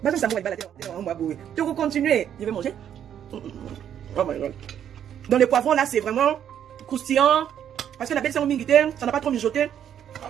Basum samu walibala te, on va boue. Tu veux continuer, je vais manger. Oh my god. Dans les poivrons là, c'est vraiment croustillant, parce que la belle c'est en mingité, ça n'a pas trop mijoté.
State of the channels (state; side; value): quieter; left; 9.6 dB